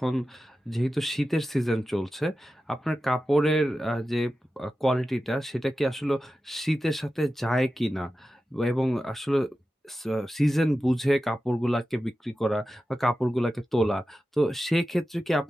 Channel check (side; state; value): both; normal; correlation 0.93